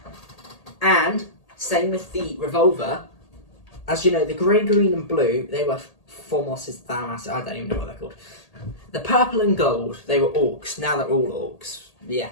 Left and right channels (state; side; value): late; right; 1.8 ms